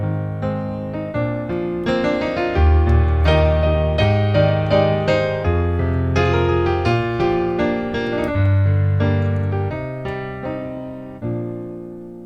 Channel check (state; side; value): identical; both; correlation 1.00